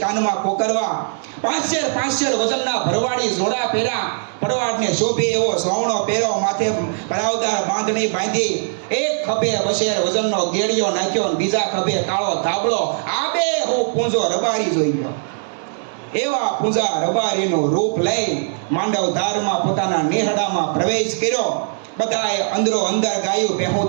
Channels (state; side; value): silent; left; digital silence